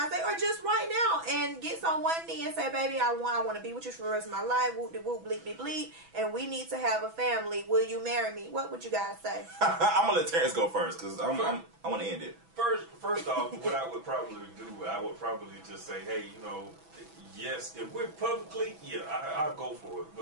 Day or just right now and gets on one knee and say, baby, I want to be with you for the rest of my life, whoop de whoop, bleep de bleep, and we need to have a family, will you marry me? What would you guys say? I'm gonna let Terrence go first, because I want to end it. First off, what I would probably do, I would probably just say, hey, yes, if we're publicly, I'll go for it,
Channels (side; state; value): left; late; 6.1 ms